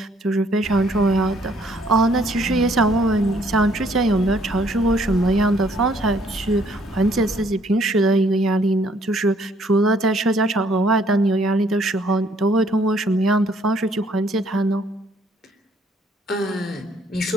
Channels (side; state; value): both; normal; correlation 0.64